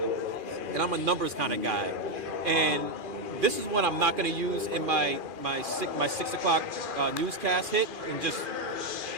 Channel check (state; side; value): late; left; 2.4 ms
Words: and I'm a numbers kind of guy. And this is one I'm not going to use in my 6 o'clock newscast hit in just